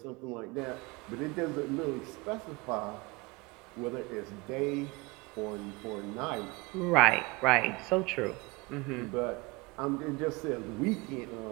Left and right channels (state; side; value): quieter; left; 24.0 dB